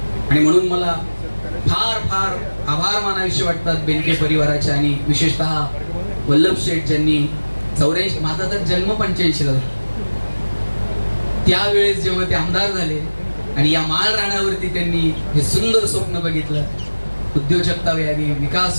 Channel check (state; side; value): inverted; both; correlation -1.00